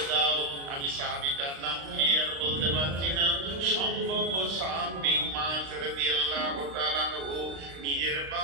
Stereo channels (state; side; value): late; left; 36 ms